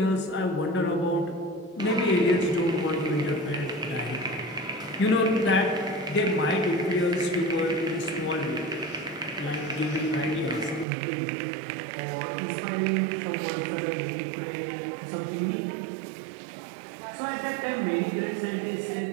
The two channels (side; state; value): left; drops out; at 10.9 s